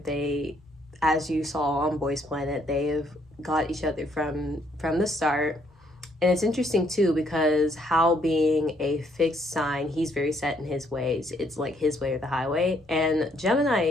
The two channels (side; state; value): both; normal; correlation 0.69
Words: They, as you saw on Boys Planet, they have got each other from the start. And it's interesting too because Hal being a fixed sign, he's very set in his ways. It's like his way or the highway. And